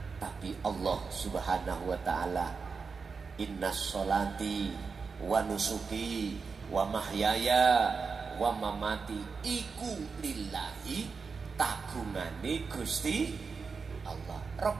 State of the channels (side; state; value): left; quieter; 5.0 dB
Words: tapi Allah Subhanahu wa ta'ala. Inna sholati wa nusuki wa mahyaya wa mamati iku lillahi, kagungane Gusti Allah